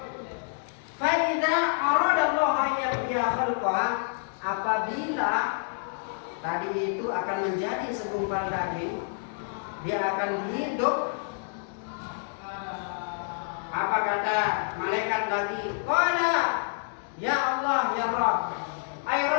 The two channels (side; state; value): right; silent; digital silence